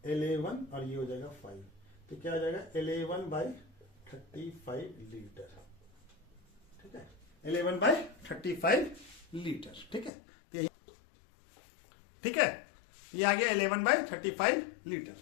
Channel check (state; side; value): drops out; right; at 10.1 s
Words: 11 और ये हो जाएगा 5, तो क्या आ जाएगा 11/35 लीटर। ठीक है, 11/35 लीटर। ठीक है, ठीक है, ये आ गया 11/35 लीटर।